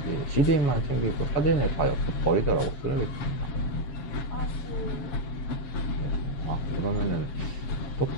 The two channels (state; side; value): late; right; 7.2 ms